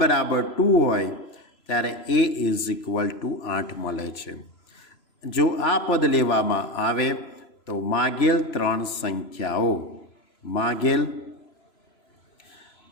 બરાબર 2 હોય ત્યારે એ ઇઝ ઇક્વલ ટુ 8 મળે છે. જો આ પદ લેવામાં આવે તો માગેલ ત્રણ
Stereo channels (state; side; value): late; right; 3.0 ms